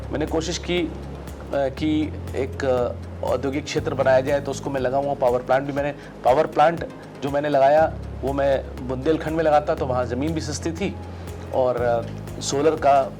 मैंने कोशिश की कि एक औद्योगिक क्षेत्र बनाया जाए। तो उसको मैं लगा हुआ पावर प्लांट जो मैंने लगाया वो मैं बुंदेलखंड में लगाता तो वहाँ ज़मीन भी सस्ती थी और सोलर का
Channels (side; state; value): both; identical; correlation 1.00